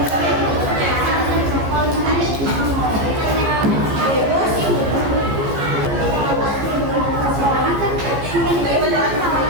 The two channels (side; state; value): left; late; 15 ms